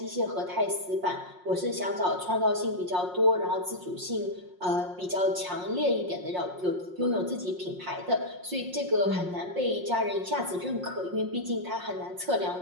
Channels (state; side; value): late; left; 5.5 ms